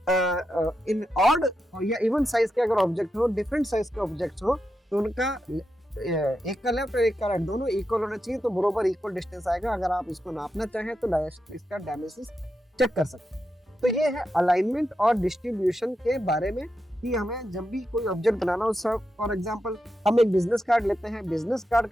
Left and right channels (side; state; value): both; normal; correlation 0.87